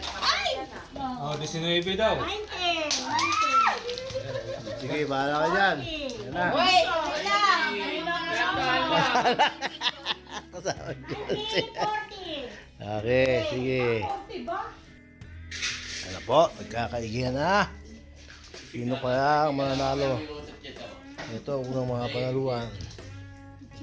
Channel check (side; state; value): both; identical; correlation 1.00